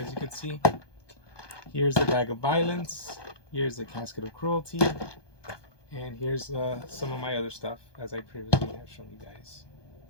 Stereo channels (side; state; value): right; late; 1.2 ms